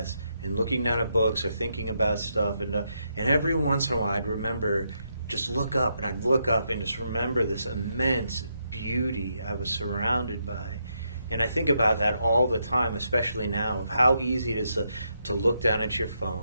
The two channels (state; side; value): inverted; both; correlation -0.80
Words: and looking down at books or thinking about stuff. And every once in a while I'd remember, just look up, and I'd look up and just remember this immense beauty I was surrounded by. And I think about that all the time, especially now, of how easy it is to look down at your